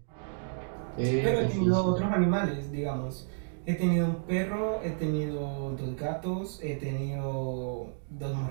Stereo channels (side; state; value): left; silent; digital silence